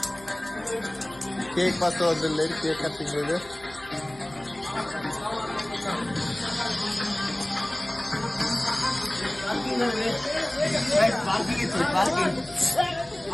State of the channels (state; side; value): noise; left; hum, 23 dB below the sound